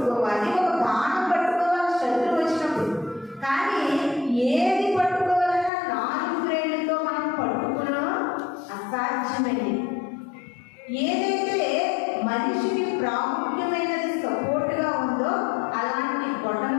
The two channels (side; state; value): right; drops out; at 5.7 s